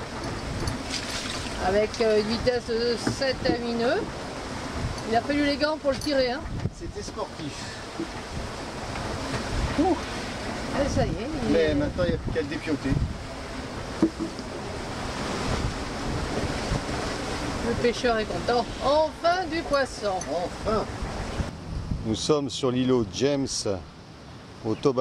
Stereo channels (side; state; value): both; identical; correlation 1.00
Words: avec une vitesse de 7 à 8 nœuds. Il a fallu les gants pour le tirer. Hein. C'était sportif. Ouh. Et ça y est. Mais maintenant il n'y a plus qu'à le dépioter. Le pêcheur est content. Enfin du poisson. Enfin. Nous sommes sur l'îlot James au